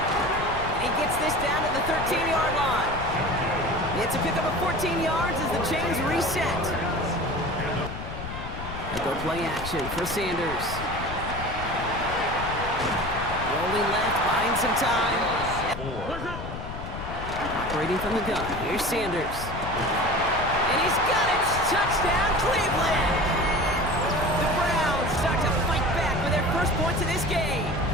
He gets this down to the 13-yard line. It's a pickup of 14 yards as the chains reset. And go play action for Sanders. Rolling left, buying some time. Operating from the gun, here's Sanders. And he's got it! Touchdown, Cleveland! The Browns start to fight back with their first points of this game.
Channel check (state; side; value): noise; left; rumble, 8 dB below the sound